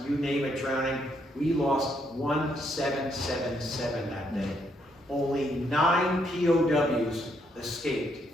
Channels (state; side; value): normal; both; correlation 0.74